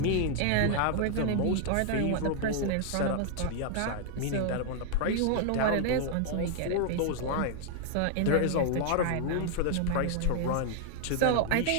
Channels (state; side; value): different; both; correlation 0.00